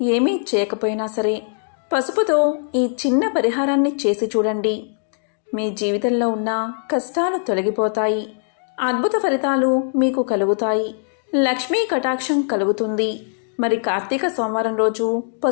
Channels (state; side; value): silent; right; digital silence